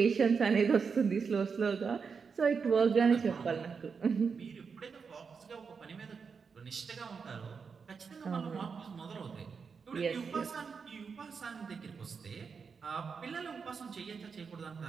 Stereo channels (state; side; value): quieter; left; 5.6 dB